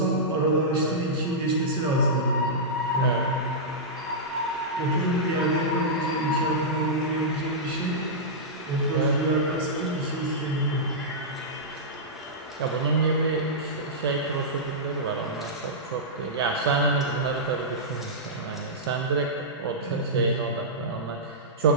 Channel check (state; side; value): normal; both; correlation -0.13